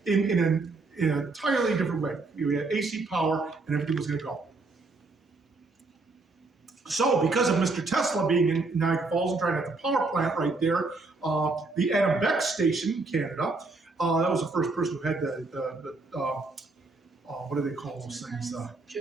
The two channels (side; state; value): left; quieter; 3.6 dB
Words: in an entirely different way. We had AC power and everything was going to go. So, because of Mr. Tesla being in Niagara Falls and trying to have the power plant right there, the Adam Beck station in Canada, that was the first person who had the what do they call those things?